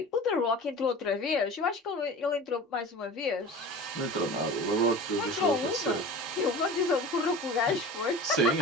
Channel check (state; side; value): normal; both; correlation 0.36